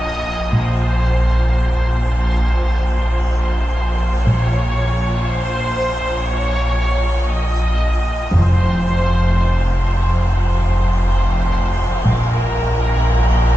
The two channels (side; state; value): both; normal; correlation 0.92